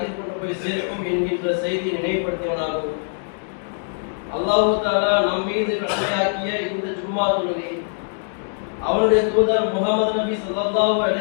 கொண்டு போய் சேர்க்கும் என்கின்ற செய்தி நினைவுபடுத்தியவனாகும். அல்லாஹ் தஆலா நம் மீது கடமையாக்கிய இந்த ஜும்மா தொழுகை அவருடைய தூதர் முஹம்மது நபி ஸல்லல்லாஹு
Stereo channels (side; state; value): right; silent; digital silence